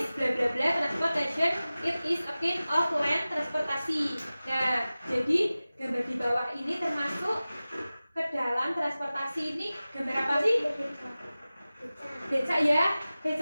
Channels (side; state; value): both; inverted; correlation -0.97